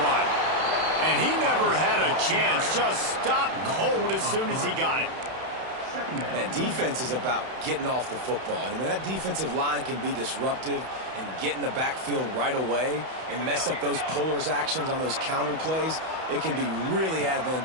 run. And he never had a chance. Just stopped cold as soon as he got it. Man, defense is about getting off the football. And when that defensive line can be disruptive and get in the backfield right away and mess up those pullers actions on those counter plays, it can be really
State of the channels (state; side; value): late; left; 31 ms